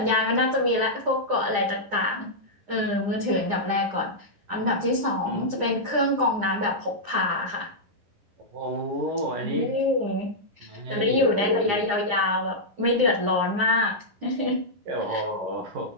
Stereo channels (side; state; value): left; late; 9.9 ms